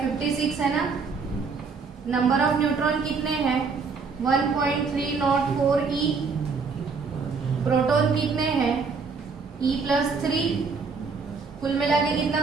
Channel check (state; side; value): quieter; left; 4.9 dB